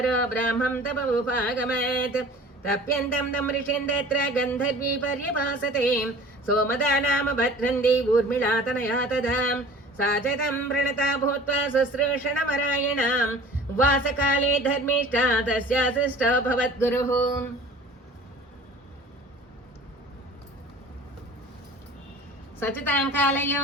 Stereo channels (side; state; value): both; normal; correlation 0.44